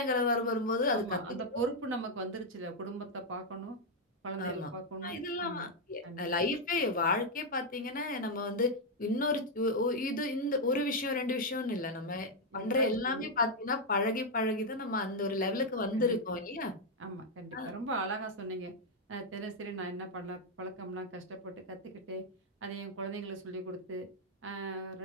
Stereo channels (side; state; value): both; normal; correlation 0.00